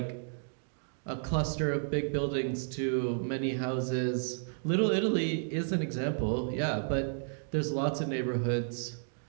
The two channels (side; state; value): left; silent; digital silence